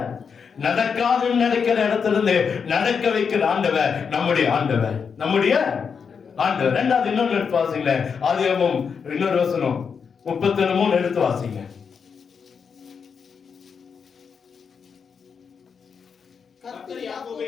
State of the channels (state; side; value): quieter; right; 6.2 dB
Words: நடக்காதுன்னு நினைக்கிற இடத்துல இருந்து நடக்க வைக்கிற ஆண்டவர் நம்முடைய ஆண்டவர், நம்முடைய ஆண்டவர். ரெண்டாவது இன்னொன்னு எடுத்து வாசிங்க. ஆதியாகமம் இன்னொரு வசனம் 33 எடுத்து வாசிங்க.